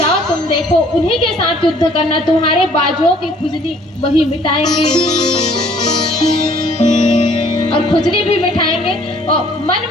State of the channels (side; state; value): both; normal; correlation 0.58